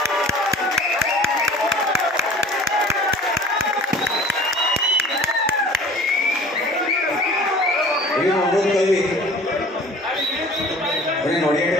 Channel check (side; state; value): both; normal; correlation 0.46